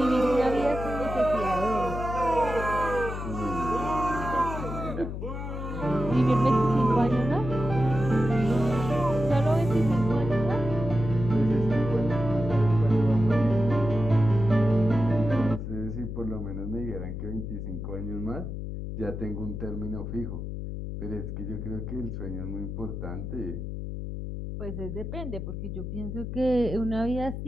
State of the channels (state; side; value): noise; left; hum, 6 dB below the sound